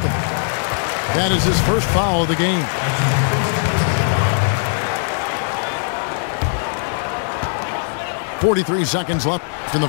That is his first foul of the game. .43 seconds left in the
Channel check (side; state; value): right; silent; 65 dB below the other